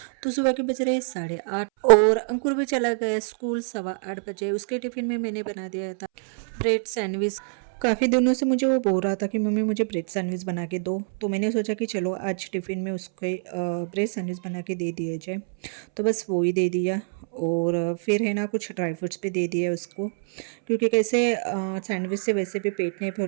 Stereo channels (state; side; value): silent; left; 61 dB below the other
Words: तो सुबह के बज रहे 8:30 और अंकुर भी चला गया स्कूल 8:15 बजे। उसके टिफिन में मैंने बना दिया था ब्रेड सैंडविच। काफ़ी दिनों से मुझे वो बोल रहा था कि मम्मी मुझे ब्रेड सैंडविच बना के दो, तो मैंने सोचा कि चलो आज टिफ़िन में उसके ब्रेड सैंडविच बना के दे दिया जाए। तो बस वो ही दे दिया और फिर है ना कुछ ड्राई फ्रूट्स भी दे दिया उसको, क्योंकि कैसे सैंडविच से वैसे भी पेट नहीं